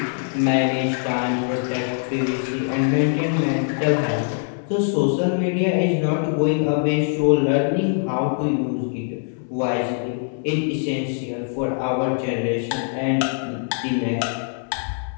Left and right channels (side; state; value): right; silent; 64 dB below the other